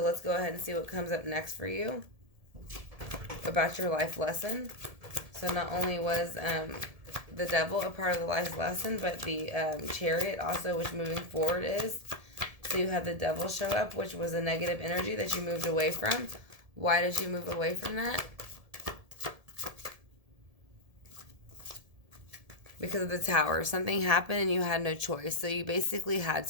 let's go ahead and see what comes up next for you about your life lesson. So not only was the Devil a part of the life lesson, but the Chariot also, which moving forward is. So you had the Devil show up, which was a negative energy that you moved away from. Why did you move away from that? Because of the Tower. Something happened and you had no choice. So you basically had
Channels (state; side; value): late; left; 1.7 ms